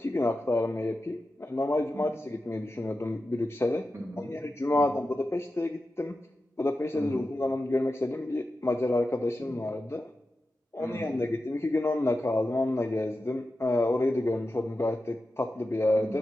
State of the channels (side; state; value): both; normal; correlation 0.92